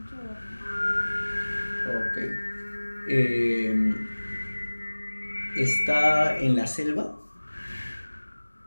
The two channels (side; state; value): both; inverted; correlation -1.00